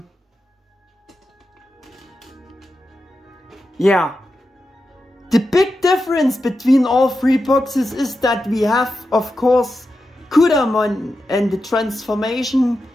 Yeah. The big difference between all three boxes is that we have, of course, Kudamon and the transformation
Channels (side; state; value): both; normal; correlation 0.90